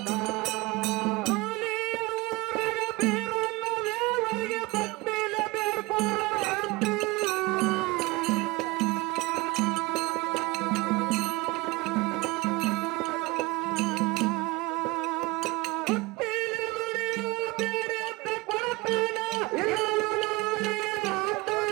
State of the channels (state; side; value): quieter; left; 23.1 dB